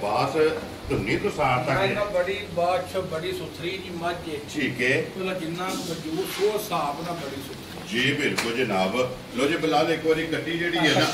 धुनी तो सार तक बड़ी बादशाह बड़ी सुथरी जी मझ ठीक है जिन्ना वजूद वो हिसाब ना बड़ी सुथरी जी बिल्कुल जनाब। लो जी बिलाल एक बारी कट्टी जेडी है ना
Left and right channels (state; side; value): identical; both; correlation 1.00